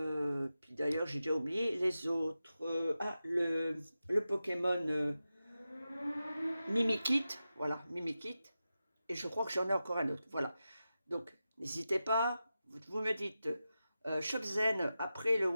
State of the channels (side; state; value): both; inverted; correlation -0.92